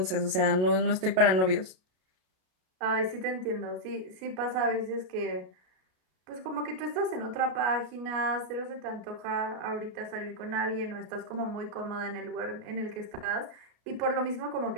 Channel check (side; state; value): left; late; 32 ms